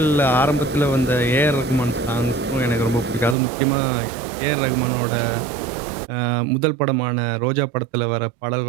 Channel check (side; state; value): left; drops out; at 3.4 s